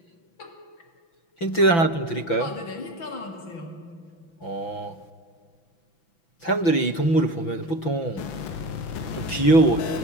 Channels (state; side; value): late; right; 6.0 ms